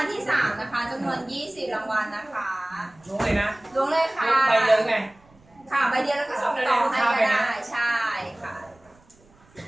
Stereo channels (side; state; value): right; noise; rumble, 30 dB below the sound